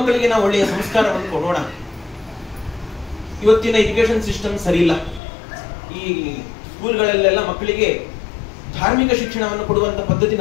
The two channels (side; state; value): right; drops out; at 5.2 s